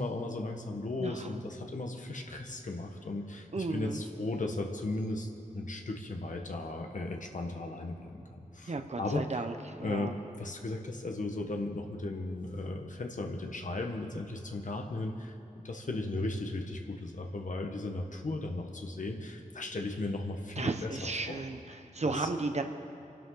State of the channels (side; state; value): both; normal; correlation 0.70